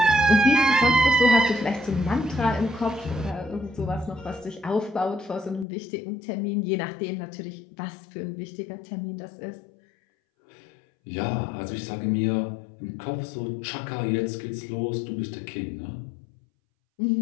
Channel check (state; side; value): drops out; right; at 5.7 s